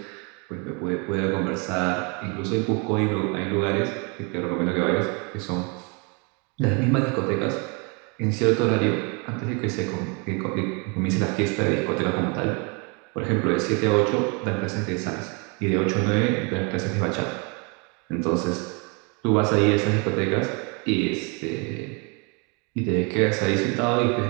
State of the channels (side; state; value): left; quieter; 33.0 dB